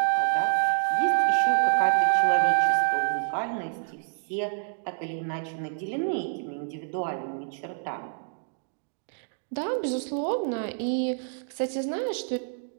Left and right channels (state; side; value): silent; left; digital silence